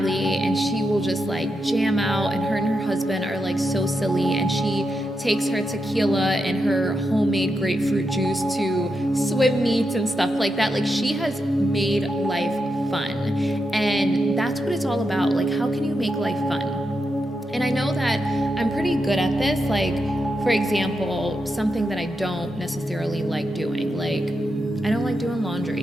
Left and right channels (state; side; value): normal; both; correlation 0.86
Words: and she will just like jam out, and her husband are like so silly, and she takes her tequila and her homemade grapefruit juice to swim meets and stuff like that. Like, she has made life fun, and that's what it's all about. Like, how can you make life fun? And I know that I'm pretty good at this. Like, for example, something that I don't necessarily like doing, like, I don't like doing